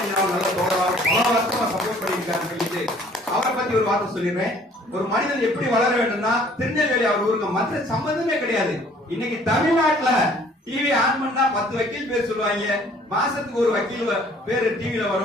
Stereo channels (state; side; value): normal; both; correlation 0.56